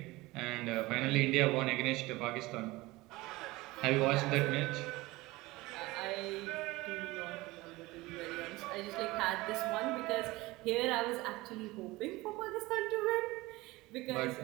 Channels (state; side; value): quieter; left; 20.5 dB